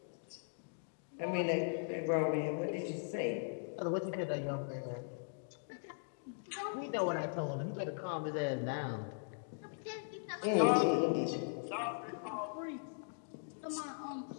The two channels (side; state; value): right; silent; digital silence